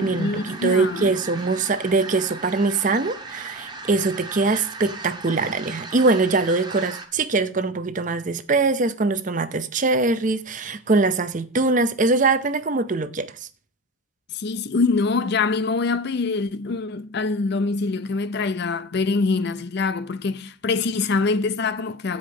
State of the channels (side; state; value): both; normal; correlation 0.28